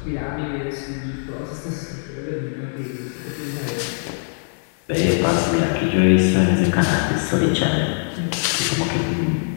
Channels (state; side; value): silent; right; digital silence